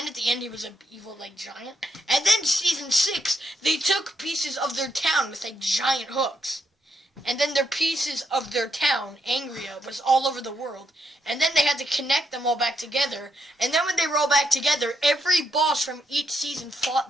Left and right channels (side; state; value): both; normal; correlation 0.79